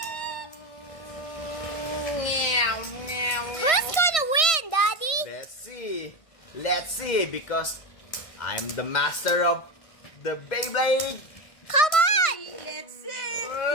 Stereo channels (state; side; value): late; right; 1.6 ms